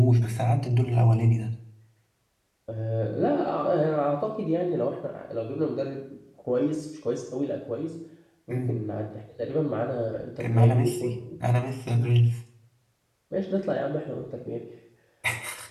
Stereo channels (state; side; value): identical; both; correlation 1.00